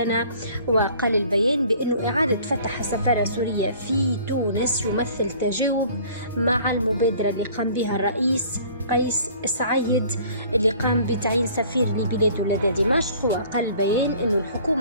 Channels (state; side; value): inverted; both; correlation -0.51